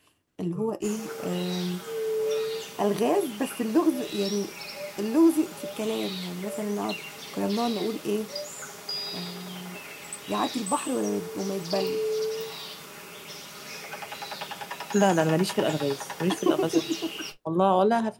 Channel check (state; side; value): identical; both; correlation 1.00